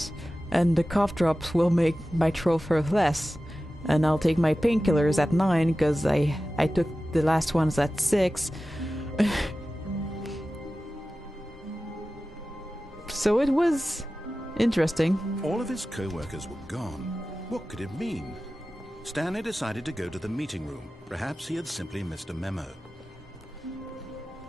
and the cough drops will make my throat hurt less. And I'll take my painkillers at 9 because I took the last ones at 6. So it was interesting. All of his co-workers were gone. What could it mean? Stanley decided to go to the meeting room. Perhaps he had simply missed a memo.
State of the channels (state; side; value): normal; both; correlation 0.95